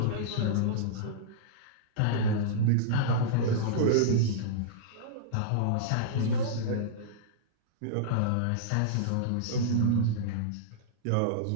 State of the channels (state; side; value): different; both; correlation -0.03